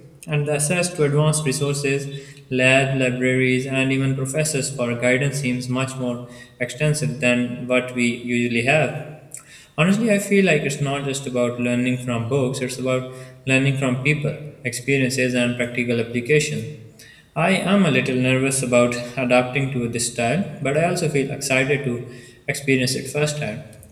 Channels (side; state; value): both; identical; correlation 1.00